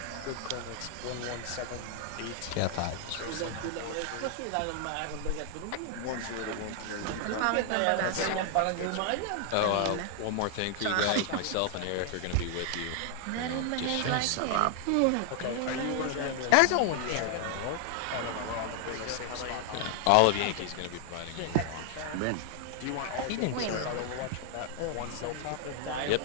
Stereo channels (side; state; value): both; different; correlation 0.00